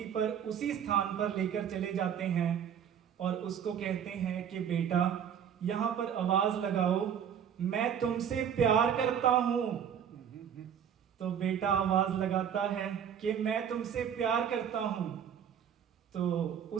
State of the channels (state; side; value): quieter; left; 8.5 dB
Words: पर, उसी स्थान पर लेकर चले जाते हैं और उसको कहते हैं कि बेटा, यहां पर आवाज लगाओ, मैं तुमसे प्यार करता हूं। तो बेटा आवाज लगाता है कि मैं तुमसे प्यार करता हूं। तो